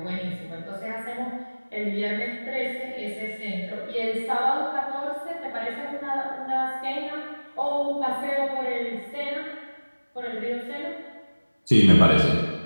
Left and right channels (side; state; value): both; inverted; correlation -1.00